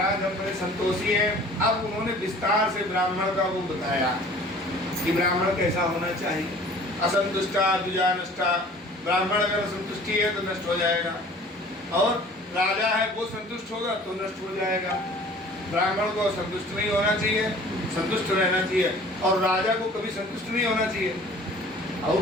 हम बड़े संतोषी हैं। अब उन्होंने विस्तार से ब्राह्मण का वो बताया कि ब्राह्मण कैसा होना चाहिए। असंतुष्टा द्विजानष्टा, ब्राह्मण अगर संतुष्टि है तो नष्ट हो जाएगा, और राजा है वो संतुष्ट होगा तो नष्ट हो जाएगा। ब्राह्मण को संतुष्ट नहीं होना चाहिए, संतुष्ट रहना चाहिए, और राजा को कभी संतुष्ट नहीं होना चाहिए,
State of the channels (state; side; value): normal; both; correlation 0.48